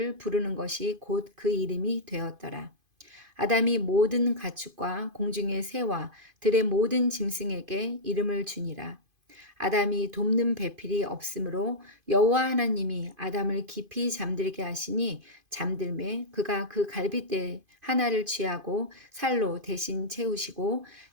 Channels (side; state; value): left; late; 2.5 ms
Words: 부르는 것이 곧 그 이름이 되었더라. 아담이 모든 가축과 공중의 새와 들의 모든 짐승에게 이름을 주니라. 아담이 돕는 배필이 없으므로 여호와 하나님이 아담을 깊이 잠들게 하시니 잠들매 그가 그 갈빗대 하나를 취하고 살로 대신 채우시고